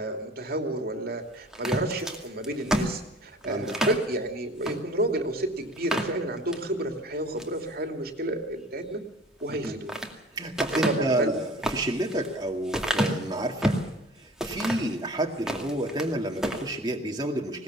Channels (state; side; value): normal; both; correlation 0.46